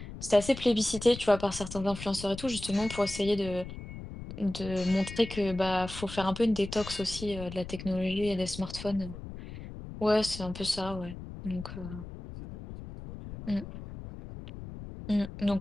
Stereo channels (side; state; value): left; noise; rumble, 11 dB below the sound